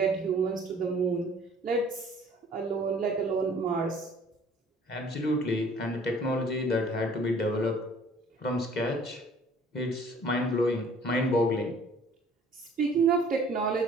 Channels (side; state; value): both; normal; correlation 0.54